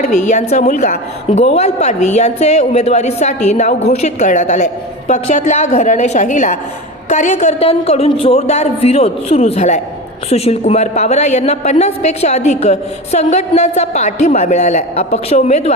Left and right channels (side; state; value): both; normal; correlation 0.26